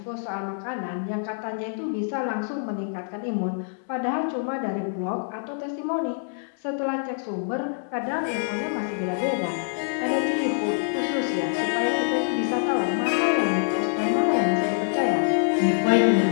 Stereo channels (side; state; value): right; silent; digital silence